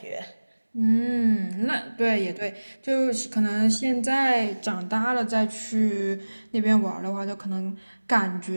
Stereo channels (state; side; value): inverted; both; correlation -1.00